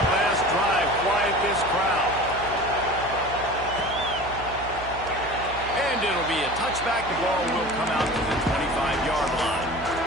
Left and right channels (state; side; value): noise; right; hum, 13 dB below the sound